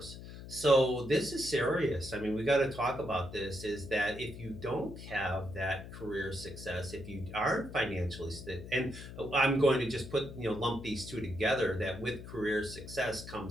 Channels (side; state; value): left; noise; hum, 12 dB below the sound